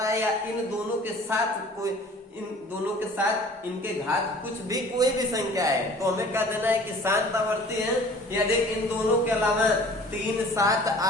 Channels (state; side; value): normal; both; correlation 0.48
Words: है, या इन दोनों के साथ कोई, इन दोनों के साथ इनके घात कुछ भी कोई भी संख्या है, तो हमें कह देना है कि शांत आवर्ती है। यदि इन दोनों के अलावा 3 7